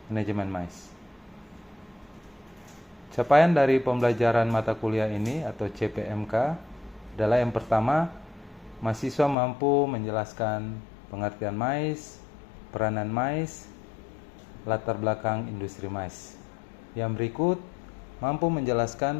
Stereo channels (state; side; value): drops out; right; at 9.3 s